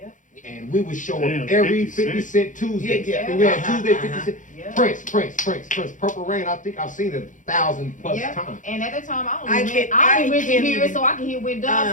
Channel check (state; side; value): late; right; 0.37 ms